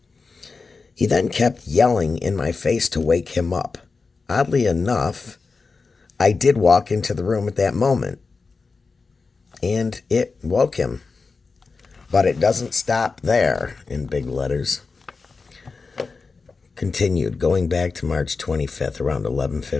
He then kept yelling in my face to wake him up. Oddly enough, I did walk into the room at that moment, and it woke him. But it doesn't stop there, in big letters. Continued, going back to March 25th, around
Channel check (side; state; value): right; quieter; 4.4 dB